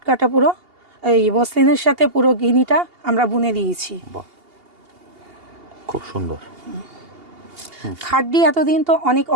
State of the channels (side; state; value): left; late; 2.8 ms